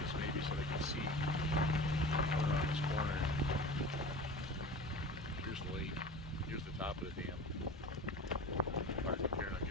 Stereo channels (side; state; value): both; normal; correlation 0.36